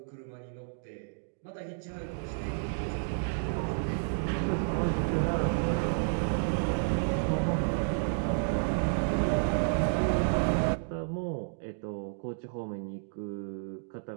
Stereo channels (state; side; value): silent; left; digital silence